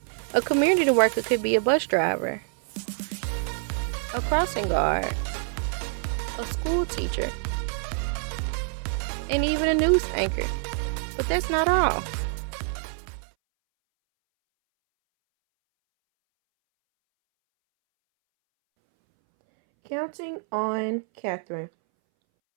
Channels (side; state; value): left; silent; 61 dB below the other